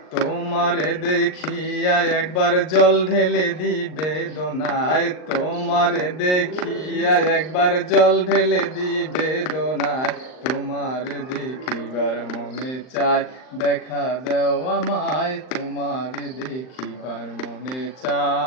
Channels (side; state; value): right; late; 39 ms